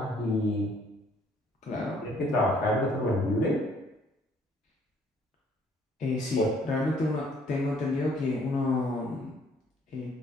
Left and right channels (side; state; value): both; normal; correlation 0.62